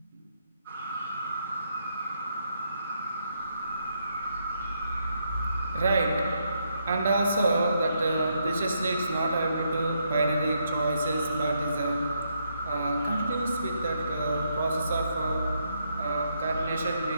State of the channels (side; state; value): both; inverted; correlation -0.77